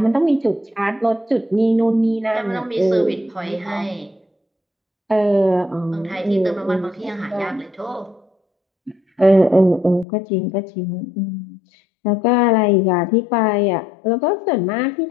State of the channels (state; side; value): drops out; right; at 10.1 s